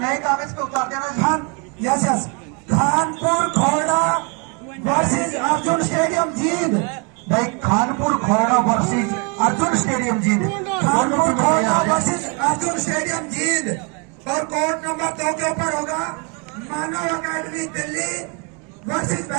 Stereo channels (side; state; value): left; quieter; 34.4 dB